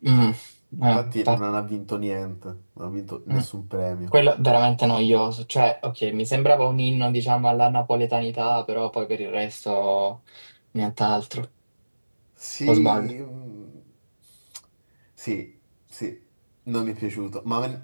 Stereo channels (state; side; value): inverted; both; correlation -1.00